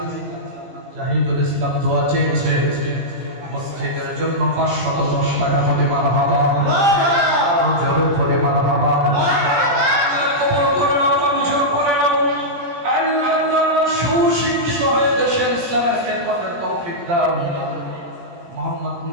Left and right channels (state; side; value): late; left; 17 ms